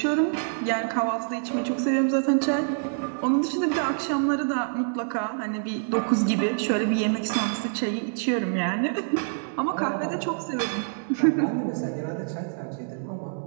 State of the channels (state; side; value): silent; left; 61 dB below the other